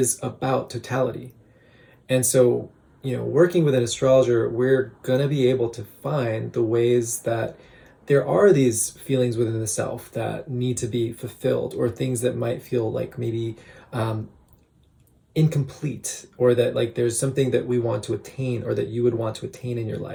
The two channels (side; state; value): both; identical; correlation 1.00